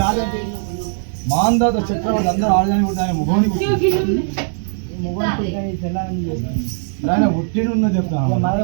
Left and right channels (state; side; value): silent; left; digital silence